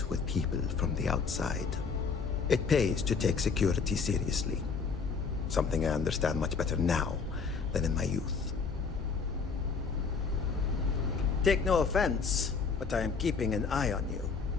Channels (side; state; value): right; quieter; 5.3 dB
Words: with people from the outside. It pays to take security seriously. Something I understand much better now than in my youth. Take no offense, but I am keeping an eye on you.